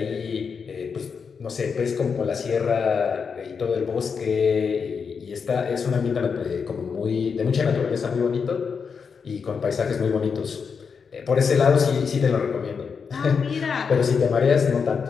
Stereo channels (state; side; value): quieter; right; 5.9 dB